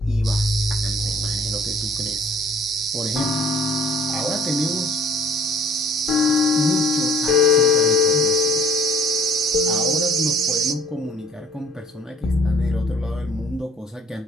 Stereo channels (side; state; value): both; normal; correlation 0.54